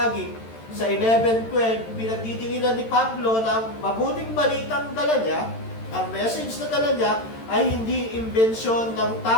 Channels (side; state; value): right; late; 13 ms